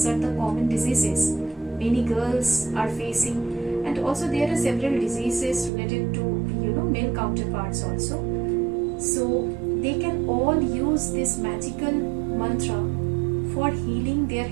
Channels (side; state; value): left; drops out; at 5.7 s